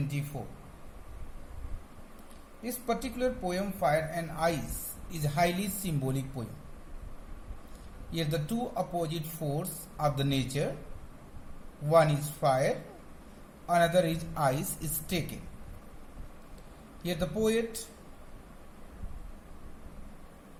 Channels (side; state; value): both; identical; correlation 1.00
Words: This particular poem, Fire and Ice, is a highly symbolic poem. Here the two opposite forces of the nature, one is fire, another is ice, is taken. Here the poet